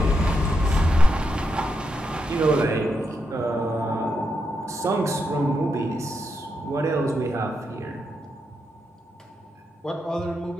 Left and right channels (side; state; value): both; normal; correlation 0.83